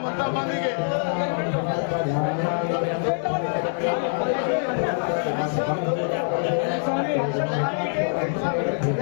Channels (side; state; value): right; silent; digital silence